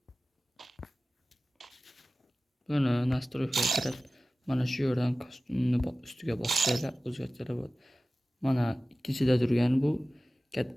Buni nastroykaga kirib, mana shu yerdan kostyumni ustiga bossanglar o'zgartirib bo'ladi. Mana ikkinchida turgan bu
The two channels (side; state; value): both; normal; correlation 0.97